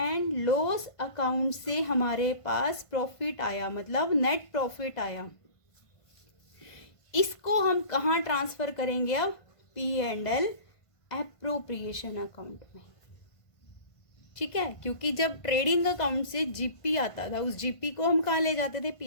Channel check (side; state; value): right; late; 1.5 ms